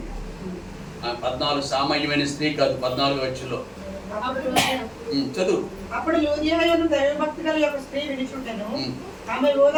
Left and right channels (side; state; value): both; identical; correlation 1.00